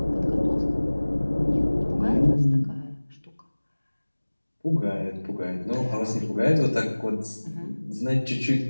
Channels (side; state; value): both; inverted; correlation -1.00